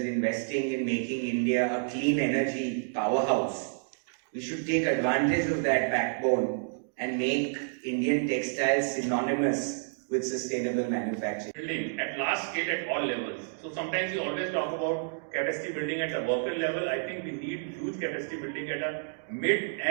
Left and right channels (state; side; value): silent; left; digital silence